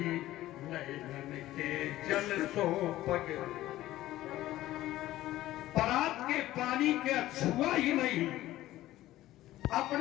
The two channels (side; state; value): right; quieter; 15.3 dB